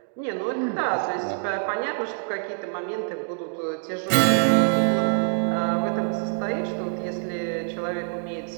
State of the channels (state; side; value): silent; left; 61 dB below the other